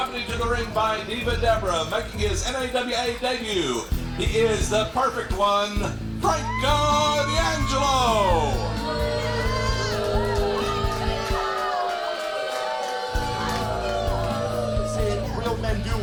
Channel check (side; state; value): both; identical; correlation 1.00